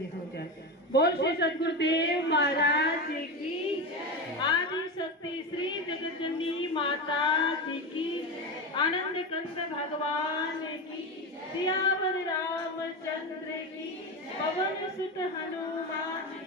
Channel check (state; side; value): normal; both; correlation 0.19